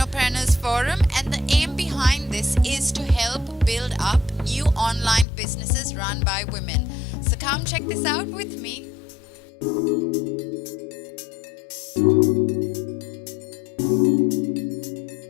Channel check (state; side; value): drops out; right; at 5.2 s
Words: Forum, and the aim behind this is to help build up new online businesses run by women. So come check this out with me.